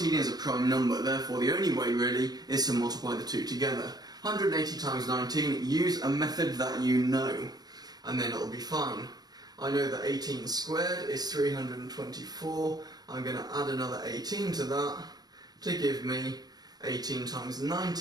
is a prime number, therefore the only way really is to multiply the two together. 180 times 19, use a method that you know, and then it'll be fine. I know that 18 squared is 324, I'm going to add another 18 to that to give me 18 times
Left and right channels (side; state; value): left; late; 0.19 ms